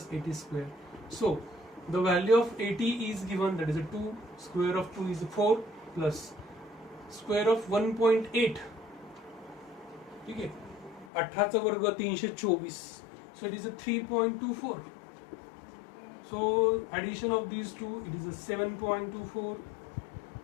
AT square. So the value of AT is given, that is a 2, square of 2 is 4, plus square of 1.8. ठीक है, 18 चा वर्ग 324. So it is a 3.24. So addition of these two, it is a 7.24.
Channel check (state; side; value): drops out; right; at 11.1 s